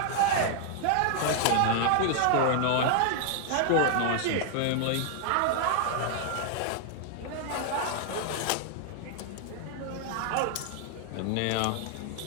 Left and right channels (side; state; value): both; different; correlation 0.00